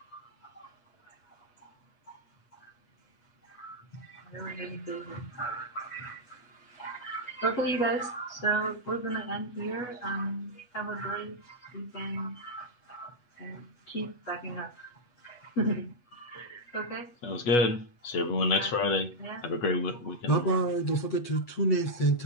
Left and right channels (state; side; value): late; right; 8.2 ms